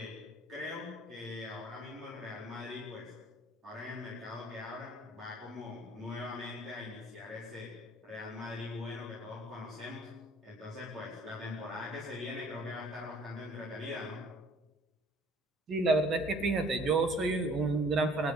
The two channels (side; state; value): both; normal; correlation 0.55